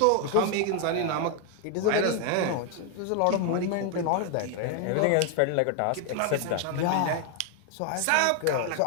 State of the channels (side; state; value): both; different; correlation 0.01